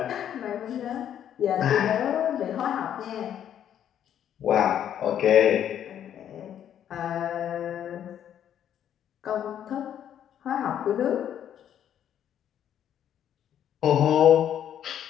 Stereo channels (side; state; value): right; quieter; 10.0 dB